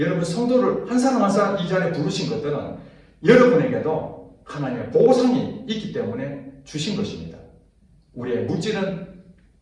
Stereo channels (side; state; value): both; identical; correlation 1.00